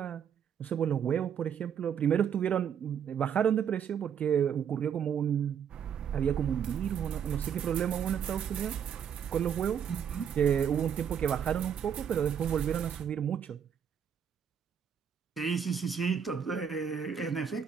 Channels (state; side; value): quieter; left; 8.0 dB